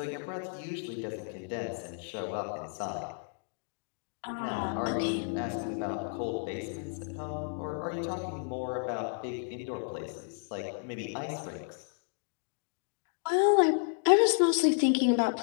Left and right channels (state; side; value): silent; right; 56 dB below the other